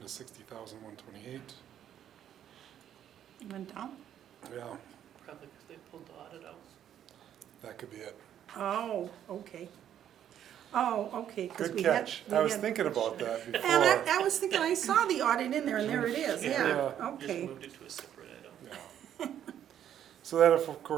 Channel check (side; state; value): left; quieter; 10.2 dB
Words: 60,128. Went down? Yeah, Probably because they pulled the audit out. that could be it. Oh, okay. Oh, okay, because Good we had. catch. we I was had- thinking about that And before. I was thinking, I saw the audit in there, and there it is, yeah, Yeah. Just okay. moved it to a separate item. Yeah. So that of